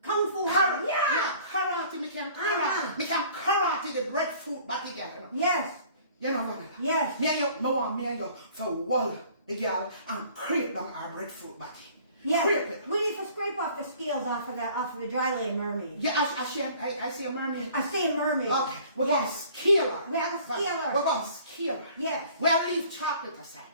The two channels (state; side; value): inverted; both; correlation -0.52